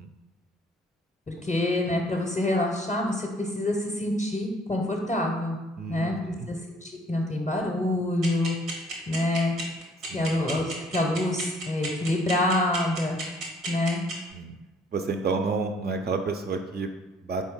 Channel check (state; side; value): normal; both; correlation 0.61